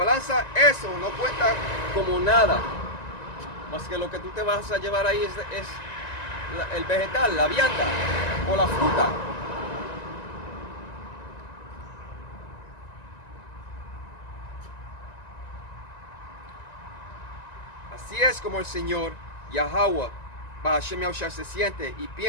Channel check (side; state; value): right; late; 1.9 ms